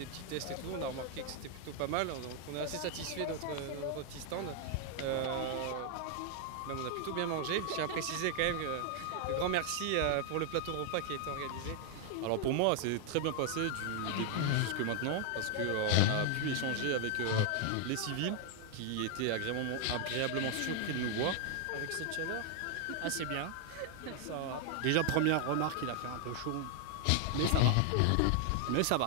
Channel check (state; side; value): different; both; correlation 0.00